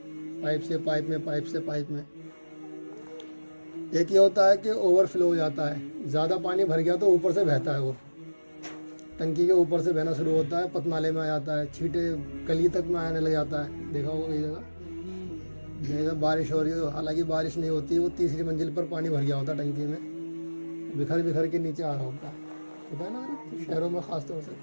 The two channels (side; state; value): both; inverted; correlation -1.00